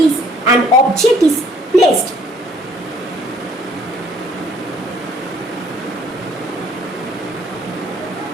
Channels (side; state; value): both; normal; correlation 0.60